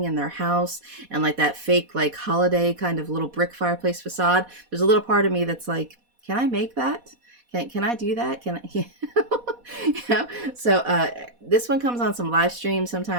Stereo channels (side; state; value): left; late; 4.1 ms